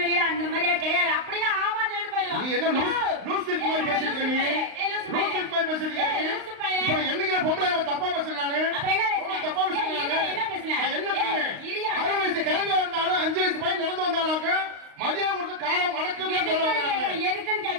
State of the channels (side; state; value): left; late; 35 ms